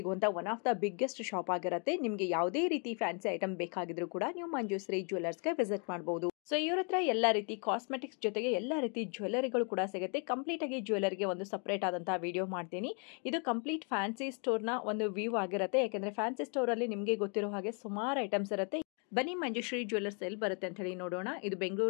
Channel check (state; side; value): quieter; right; 38.2 dB